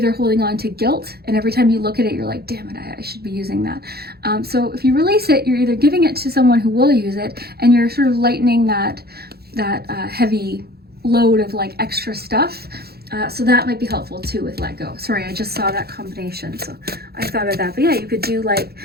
holding on to guilt, and every time you look at it, you're like, damn it, I should be using that. So if you release it, you're either giving it to someone who will use it, and you're sort of lightening that heavy load of like extra stuff. So that might be helpful too with let go. Sorry, I just saw that combination, so I thought of that. But yeah, you could do like,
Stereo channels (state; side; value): late; left; 0.46 ms